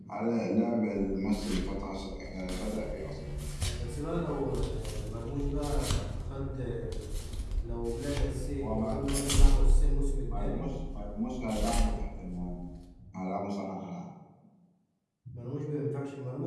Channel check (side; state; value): both; identical; correlation 1.00